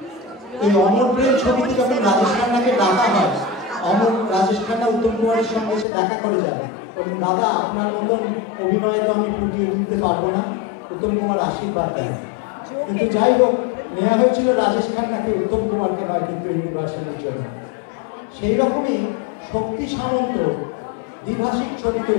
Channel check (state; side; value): drops out; right; at 5.9 s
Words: এই অমর প্রেম ছবিতে যখন রাজেশ খান্নাকে ডাকা হয়, রাজেশ খান্না উত্তম কুমারের সঙ্গে এসে দেখা করে যায়, দাদা আপনার মতন অভিনয় তো আমি ফুটিয়ে তুলতে পারবো না, উত্তম কুমার আশীর্বাদ দেয়। কিন্তু যাই হোক, নেওয়া হয়েছিল রাজেশ খান্নাকে, উত্তম কুমারকে নয়, কিন্তু হিন্দি ভার্সনের জন্য। সেই রকমই শক্তি সামন্ত দ্বিভাষিক ছবি